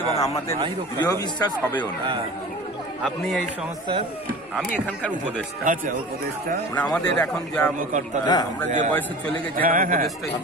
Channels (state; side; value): normal; both; correlation 0.38